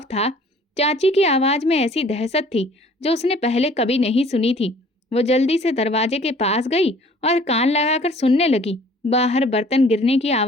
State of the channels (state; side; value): normal; both; correlation 0.53